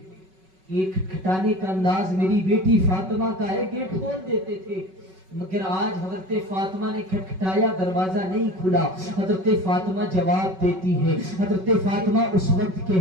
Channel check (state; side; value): late; left; 5.3 ms